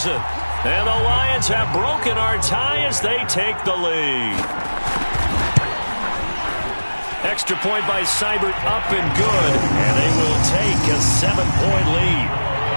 And the Lions have broken our tie as they take the lead. Extra point by Seibert, up and good. And they will take a 7-point lead.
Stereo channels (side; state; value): both; inverted; correlation -1.00